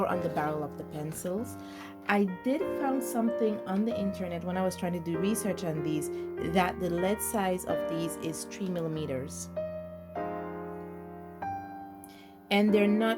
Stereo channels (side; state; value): both; identical; correlation 1.00